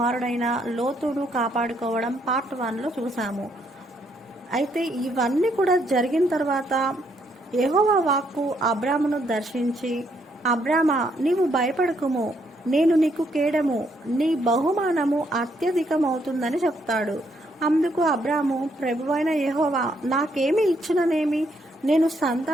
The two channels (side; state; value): both; normal; correlation 0.73